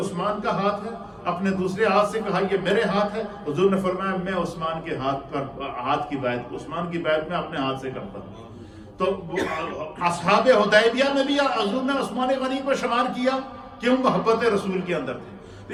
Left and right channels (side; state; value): both; identical; correlation 1.00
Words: کا ہاتھ ہے، اپنے دوسرے ہاتھ سے کہا یہ میرے ہاتھ ہے، حضور نے فرمایا میں عثمان کے ہاتھ کی بیعت، عثمان کی بیعت میں اپنے ہاتھ سے کرتا ہوں۔ تو اصحاب حدیبیہ میں بھی حضور نے عثمان غنی کو شمار کیا، کیوں؟ محبت رسول کے اندر تھے۔